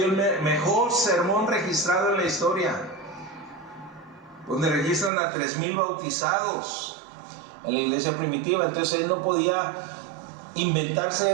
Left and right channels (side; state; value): left; drops out; at 5.1 s